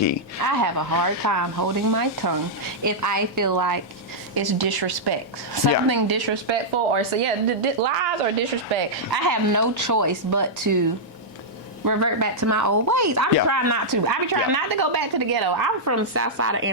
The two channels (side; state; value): both; normal; correlation -0.08